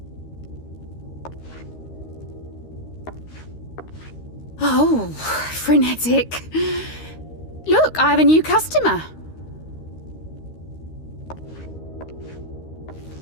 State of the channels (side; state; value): right; late; 13 ms